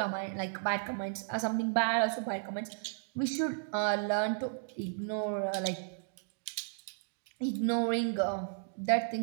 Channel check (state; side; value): silent; left; digital silence